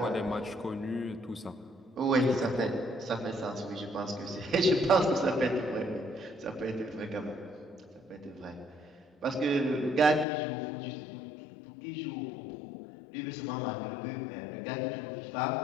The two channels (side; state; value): right; drops out; at 10.2 s